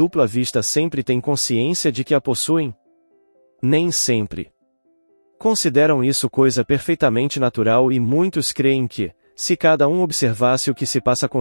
vista sempre têm consciência de que a possuem? Nem sempre. Consideram isso coisa perfeitamente natural e muitos creem que, se cada um observasse o que se passa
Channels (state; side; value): inverted; both; correlation -1.00